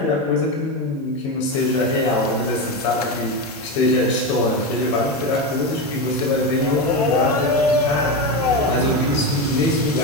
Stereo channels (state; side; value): normal; both; correlation 0.15